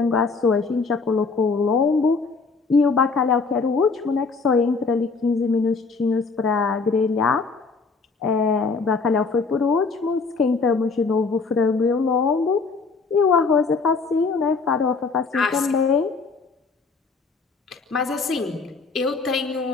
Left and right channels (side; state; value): right; quieter; 4.5 dB